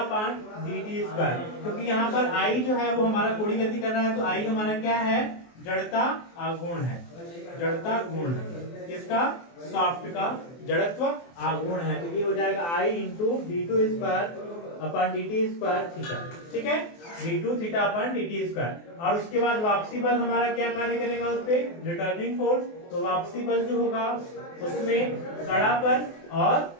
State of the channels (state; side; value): late; right; 24 ms